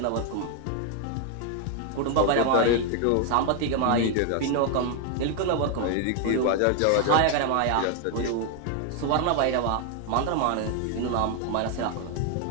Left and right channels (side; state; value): both; different; correlation 0.01